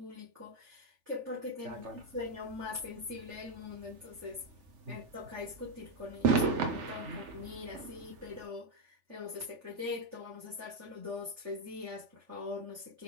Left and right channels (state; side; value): late; left; 3.4 ms